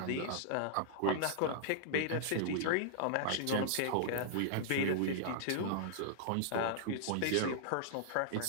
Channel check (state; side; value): different; both; correlation -0.01